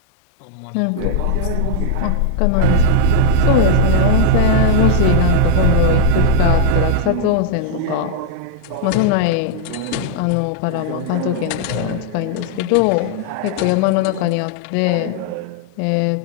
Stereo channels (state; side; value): different; both; correlation -0.01